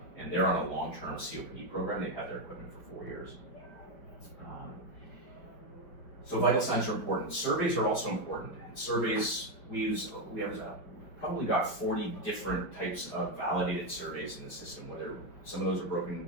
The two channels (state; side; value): late; right; 4.9 ms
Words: And they're on a long-term COPD program. They've had their equipment for 4 years. So vital signs are important. Surveys are also important. Surveys, we have probably got 40 different types of validated surveys in the system, whether some of those are broken